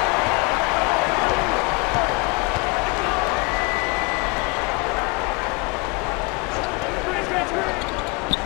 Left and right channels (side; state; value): right; quieter; 28.1 dB